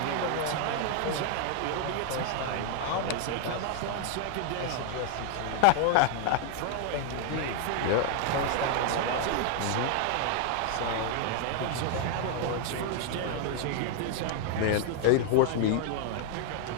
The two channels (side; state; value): both; different; correlation 0.00